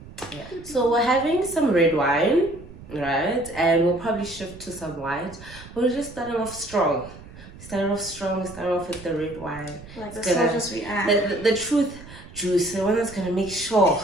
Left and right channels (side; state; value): right; noise; rumble, 18 dB below the sound